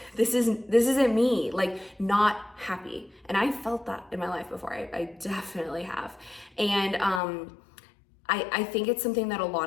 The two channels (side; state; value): right; drops out; at 7.2 s